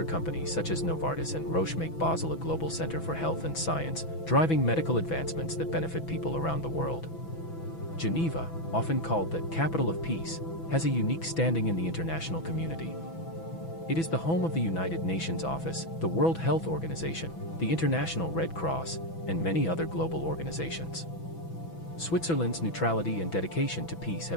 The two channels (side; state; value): right; late; 6.0 ms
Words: companies such as Novartis and Roche make Basel a global center for health and science, driving medical advancements that benefit people around the world. Geneva, often called the capital of peace, has a unique standing in the international community. It is the home of the United Nations Office, the World Health Organization, the International Red Cross, and many other global organizations. Switzerland's neutrality and dedication to peace